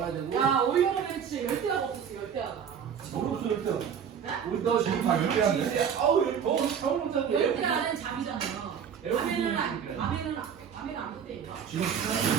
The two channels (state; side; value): quieter; left; 7.7 dB